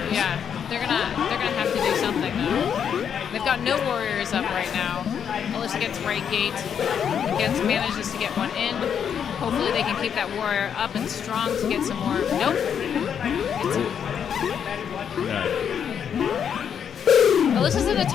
they're gonna have to do something though. They've got no warriors up right now. Alyssa gets right gate, manages to get one in. Hopefully they can keep that warrior up and strong to get some more. Nope. Alyssa's in a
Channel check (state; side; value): quieter; right; 8.0 dB